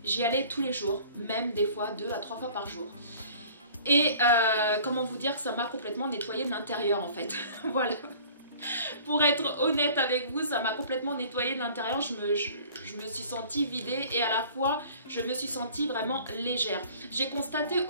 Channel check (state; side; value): inverted; both; correlation -0.48